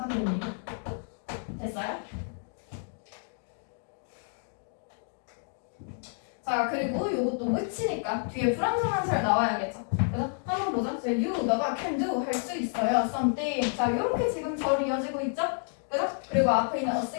됩니다. 됐어요? 자, 그리고 요것도 which니까 뒤에 불완전한살 나와야겠죠. 그래서 한번 보자. you, 너가 can do 할 수 있어요. something. 자, 요렇게 지금 절 이어지고 있죠? 그죠? 그리고 앞에 있는 a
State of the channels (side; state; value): right; silent; 58 dB below the other